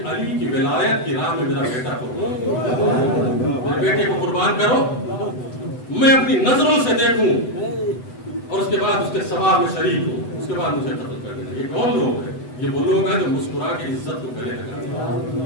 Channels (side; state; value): right; late; 7.9 ms